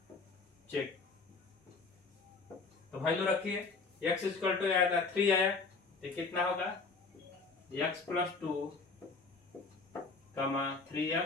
चेक तो वैल्यू रखिए x इक्वल टू आया था 3 आया तो कितना होगा x+2 कमा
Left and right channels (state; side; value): quieter; right; 4.2 dB